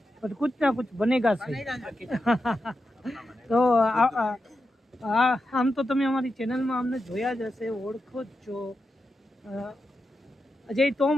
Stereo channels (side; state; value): both; normal; correlation 0.88